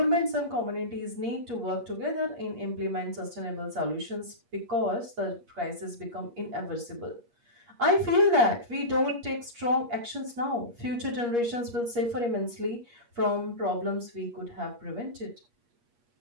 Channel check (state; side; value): late; left; 8.5 ms